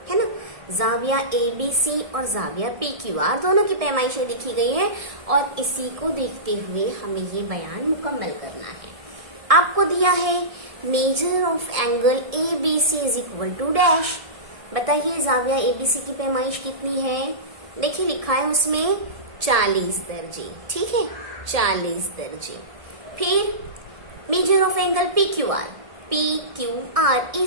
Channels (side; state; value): left; late; 1.7 ms